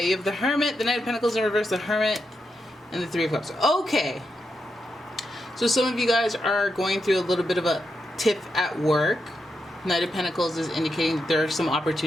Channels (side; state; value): both; normal; correlation 0.85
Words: You have the Hermit, the Knight of Pentacles in reverse, the Hermit, and the Three of Cups. Okay. So some of you guys are going through a little bit of a tiff at work. Knight of Pentacles is indicating that there are some